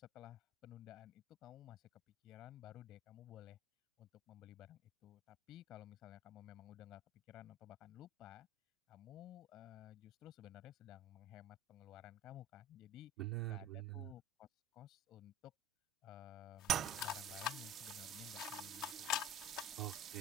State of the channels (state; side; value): normal; both; correlation 0.41